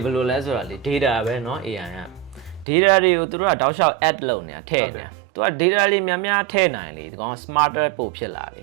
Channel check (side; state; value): left; drops out; at 2.7 s